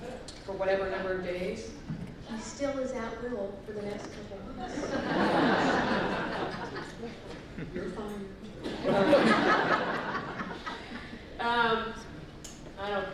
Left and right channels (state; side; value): identical; both; correlation 1.00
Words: for whatever number of days, he still is at will for the next couple of months. You're fine. I don't